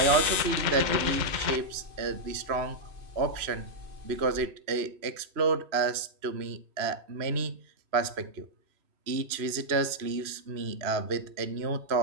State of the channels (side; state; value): left; late; 3.0 ms